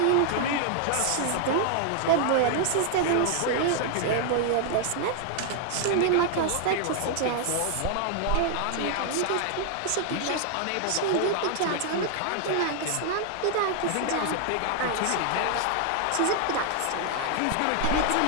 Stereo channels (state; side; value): different; both; correlation 0.00